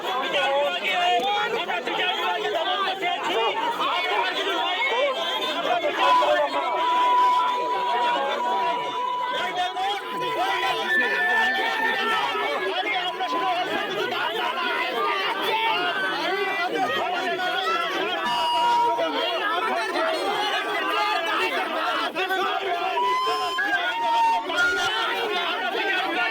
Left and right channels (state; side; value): identical; both; correlation 1.00